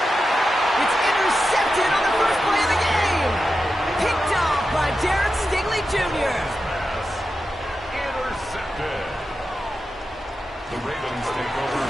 It's intercepted on the first play of the game. Picked off by Darren Stingley Jr. Intercepted. The Ravens take over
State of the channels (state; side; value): normal; both; correlation 0.90